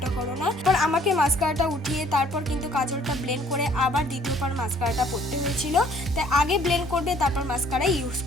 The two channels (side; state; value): both; normal; correlation 0.59